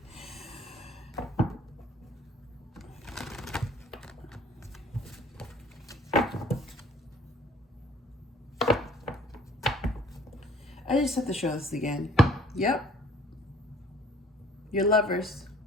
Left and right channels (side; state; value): both; normal; correlation 0.54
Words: I just have to show this again. Yep. You're lovers.